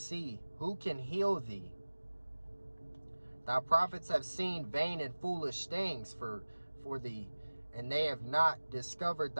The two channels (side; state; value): both; inverted; correlation -1.00